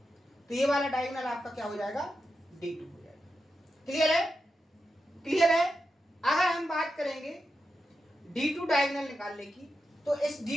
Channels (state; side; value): normal; both; correlation 0.88